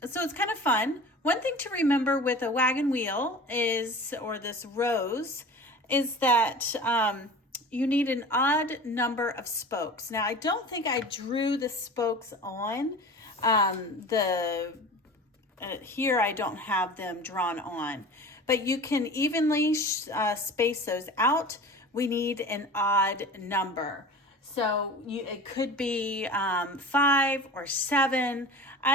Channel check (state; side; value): normal; both; correlation 0.38